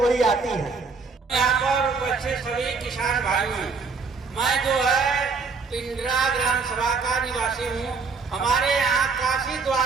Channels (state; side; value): quieter; left; 4.7 dB